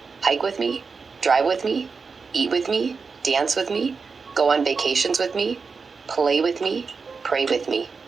hike with me, drive with me, eat with me, dance with me, go on vacations with me, play with me, pray with me.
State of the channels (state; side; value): quieter; left; 4.9 dB